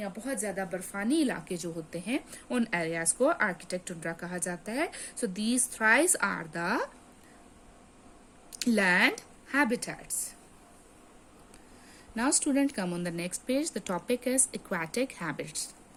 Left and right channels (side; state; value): both; identical; correlation 1.00